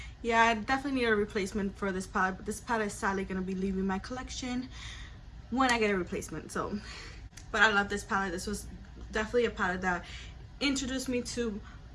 yeah, I definitely need a replacement for this palette, but this palette is sadly gonna be leaving my collection when I get a replacement. So, but I love this palette. This was definitely a palette that introduced me to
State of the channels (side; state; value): both; identical; correlation 1.00